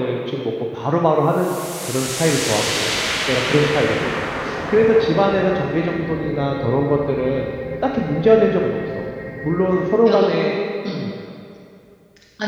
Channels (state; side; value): identical; both; correlation 1.00